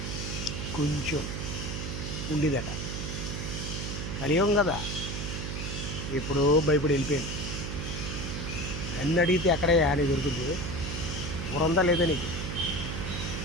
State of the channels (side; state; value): right; noise; hum, 4 dB below the sound